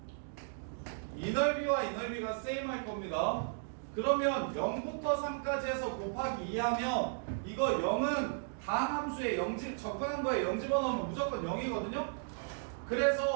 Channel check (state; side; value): silent; left; digital silence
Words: 이 넓이와 이 넓이가 세임 할 겁니다. 그러면 0부터 3까지 해서 곱하기 2 하면 이거 0은 다항 함수에 0집 접근한 거에 0 집어넣으면 무조건 0이거든요.